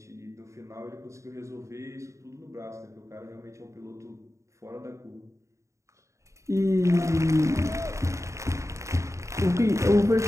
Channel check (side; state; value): left; late; 0.14 ms